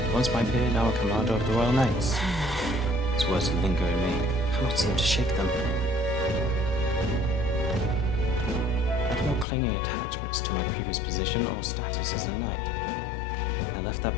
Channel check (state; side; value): drops out; right; at 9.5 s